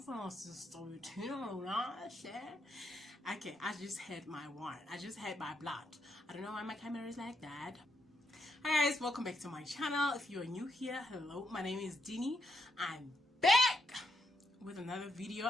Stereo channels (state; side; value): normal; both; correlation 0.78